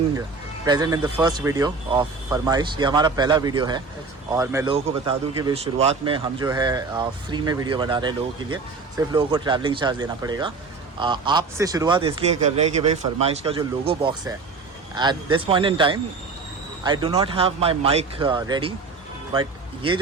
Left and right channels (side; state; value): left; quieter; 4.3 dB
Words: present in the first video of Farmaish. ये हमारा पहला वीडियो है और मैं लोगों को बता दूं कि भाई शुरुआत में हम जो है फ्री में वीडियो बना रहे हैं लोगों के लिए। सिर्फ लोगों को ट्रैवलिंग चार्ज देना पड़ेगा। आपसे शुरुआत इसलिए कर रहे हैं कि भाई फरमाइश का जो लोगो बॉक्स है, at this point in time I do not have my mic ready, but ये